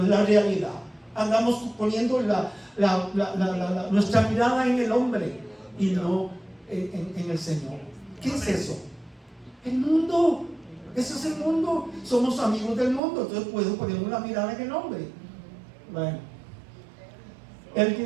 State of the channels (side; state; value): left; drops out; at 13.0 s